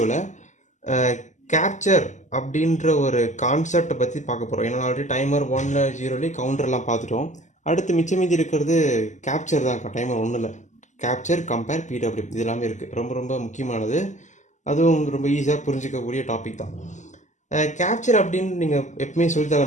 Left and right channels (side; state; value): right; late; 0.35 ms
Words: கேப்சர் அப்படின்ற ஒரு கான்செப்டை பற்றி பார்க்க போகிறோம். ஏன்னா ஆல்ரெடி டைமர் 1, 0 கவுண்டர்லாம் பார்த்துட்டோம். அடுத்து மிச்சம் மீதி இருக்கிறது கேப்சர் தான். டைமர் 1ல் கேப்சர், கம்பேர், பிடபிள்யூ இது எல்லாமே இருக்குது. ரொம்ப ரொம்ப முக்கியமானது. அதுவும் ரொம்ப ஈஸியாக புரிஞ்சிக்கக்கூடிய டாபிக் தான். கேப்சர் அப்படின்னு நீங்கள் எப்பவுமே